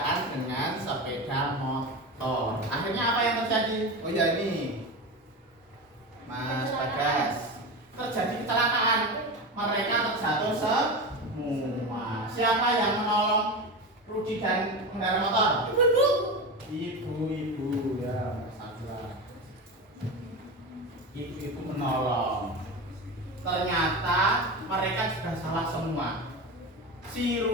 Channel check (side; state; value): both; normal; correlation 0.23